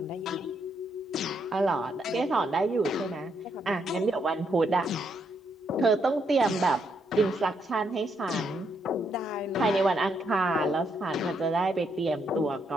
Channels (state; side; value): normal; both; correlation 0.76